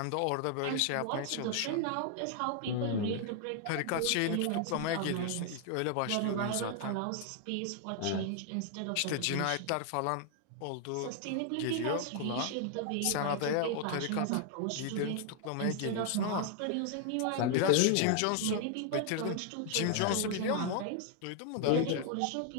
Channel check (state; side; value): different; both; correlation 0.00